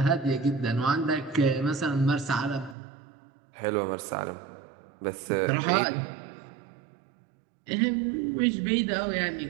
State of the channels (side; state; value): left; drops out; at 2.8 s